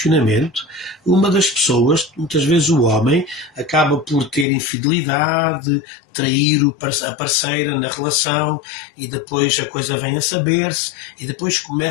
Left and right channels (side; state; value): right; drops out; at 4.5 s